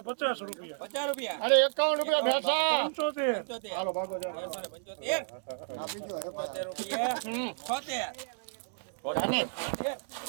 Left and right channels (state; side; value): silent; left; digital silence